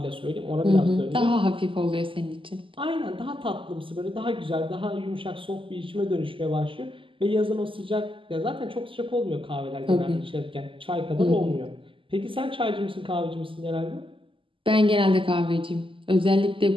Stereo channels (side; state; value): left; late; 0.25 ms